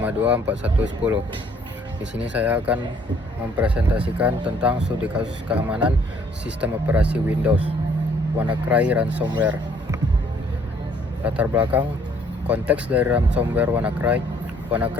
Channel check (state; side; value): normal; both; correlation 0.62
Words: Di sini saya akan mempresentasikan tentang studi kasus keamanan sistem operasi Windows, WannaCry ransomware. Latar belakang konteks dari ransomware WannaCry.